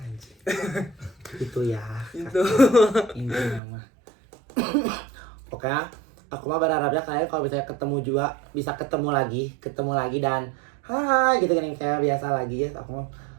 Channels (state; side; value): drops out; left; at 3.6 s